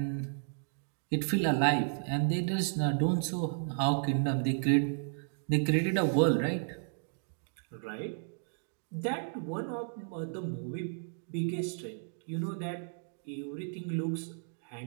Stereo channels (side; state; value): left; silent; digital silence